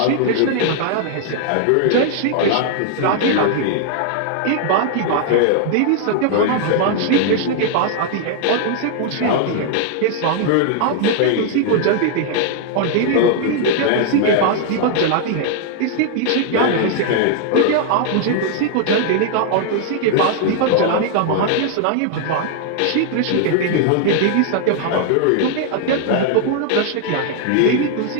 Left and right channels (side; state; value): both; different; correlation 0.00